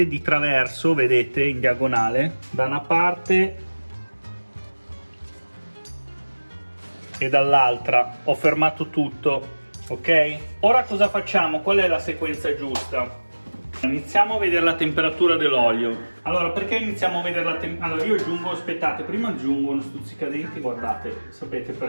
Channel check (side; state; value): both; inverted; correlation -1.00